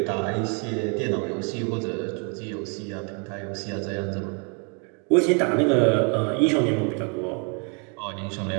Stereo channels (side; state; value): left; quieter; 37.1 dB